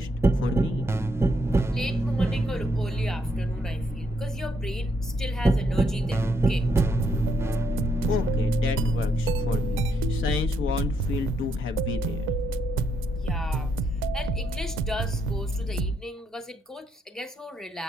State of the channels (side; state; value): both; normal; correlation 0.76